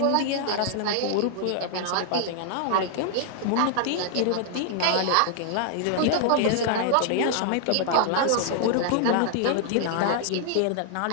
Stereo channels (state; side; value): different; both; correlation 0.00